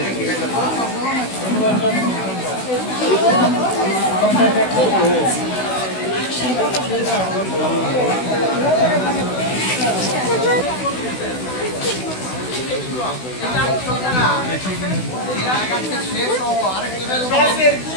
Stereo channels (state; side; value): late; right; 16 ms